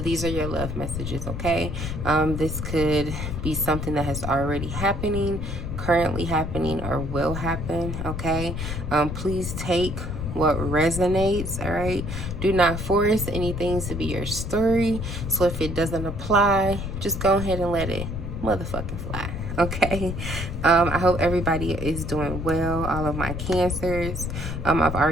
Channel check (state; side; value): noise; left; rumble, 5 dB below the sound